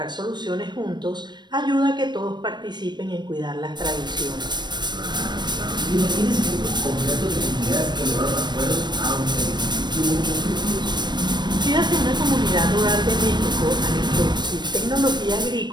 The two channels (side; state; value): left; late; 0.21 ms